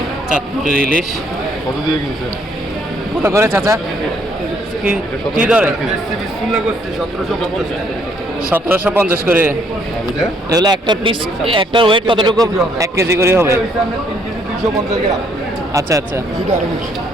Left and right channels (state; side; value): normal; both; correlation 0.67